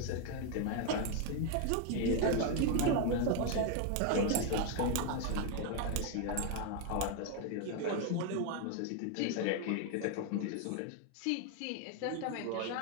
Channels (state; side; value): different; both; correlation 0.01